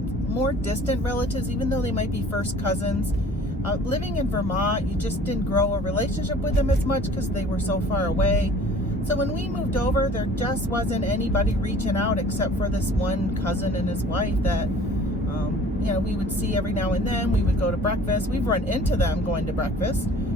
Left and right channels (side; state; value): both; normal; correlation 0.49